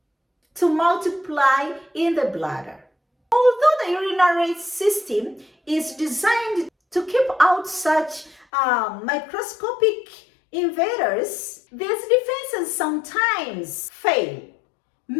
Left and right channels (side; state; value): right; drops out; at 8.5 s